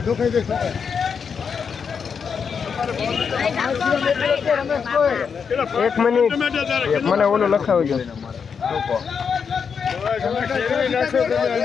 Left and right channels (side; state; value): right; quieter; 6.3 dB